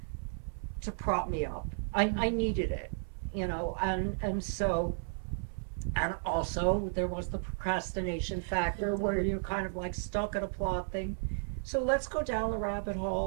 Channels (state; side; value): silent; left; 55 dB below the other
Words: to prop me up. I needed it, and so, and also there was the procrastination factor where you're kind of like stuck at a plot thing. So let's go down the rabbit